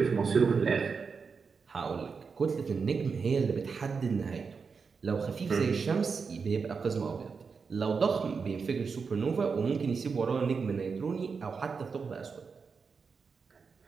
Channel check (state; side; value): quieter; left; 5.3 dB